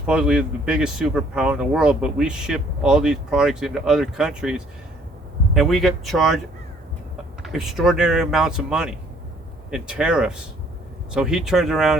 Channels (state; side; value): normal; both; correlation 0.61